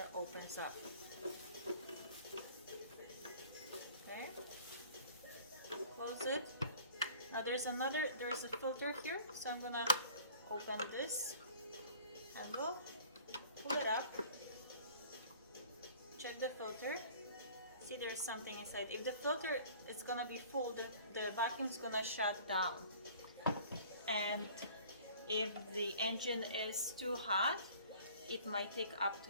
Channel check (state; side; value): inverted; both; correlation -0.50